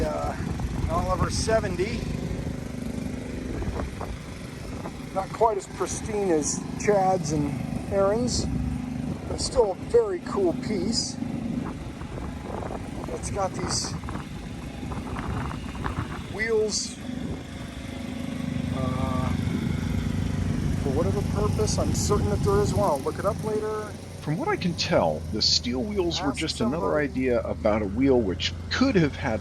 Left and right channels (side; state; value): both; identical; correlation 1.00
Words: Oliver 70. Not quite as pristine as Chad's and Aaron's, but still a very cool piece. It's got these wheels for whatever purpose. I'm certain that there is one. I'll look it up later. From what I can tell, the steel wheels were just another idea about a wheel which could have